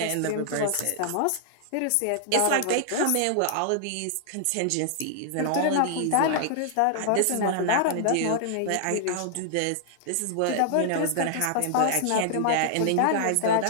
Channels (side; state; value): both; different; correlation -0.01